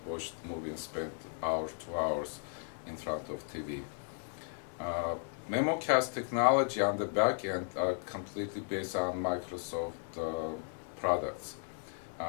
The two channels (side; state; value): right; silent; 54 dB below the other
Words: watch the movie and spend 2 hours in front of TV. Memocast technology on the back end are completely based on Microsoft products.